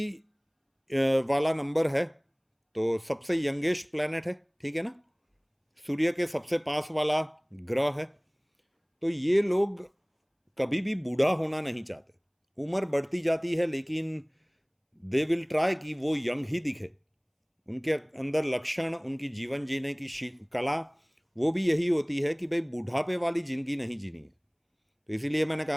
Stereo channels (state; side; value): identical; both; correlation 1.00